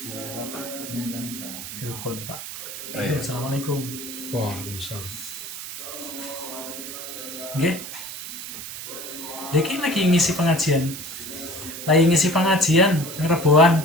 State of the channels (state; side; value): noise; right; hiss, 9 dB below the sound